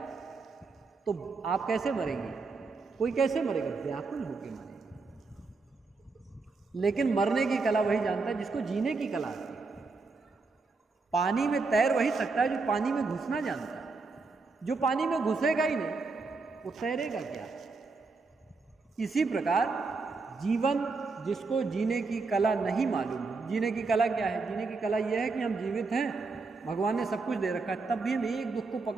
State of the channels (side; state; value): left; quieter; 4.1 dB